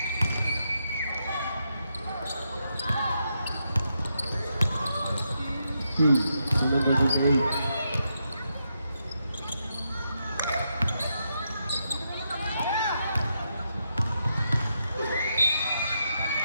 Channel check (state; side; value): inverted; both; correlation -0.82